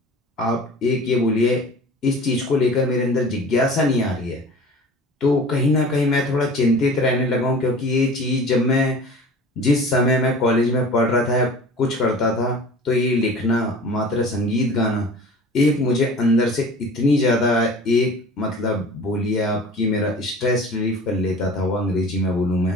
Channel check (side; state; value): both; normal; correlation 0.42